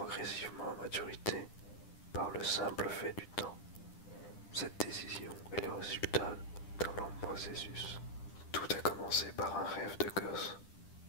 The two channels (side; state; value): right; late; 10 ms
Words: à maturité par le simple fait du temps. Cette décision est le résultat d'un long processus. Tout a commencé par un rêve de gosse,